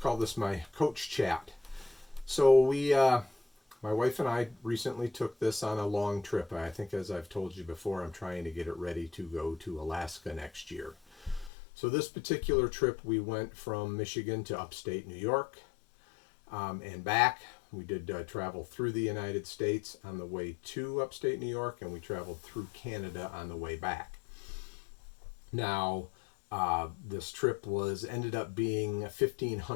call this my coach chat. So my wife and I recently took this on a long trip. I think, as I've told you before, I'm trying to get it ready to go to Alaska next year. So this particular trip, we went from Michigan to upstate New York and back. We did travel through the United States on the way to upstate New York, and we traveled through Canada on the way back. Now, this trip ended up being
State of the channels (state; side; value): drops out; right; at 11.5 s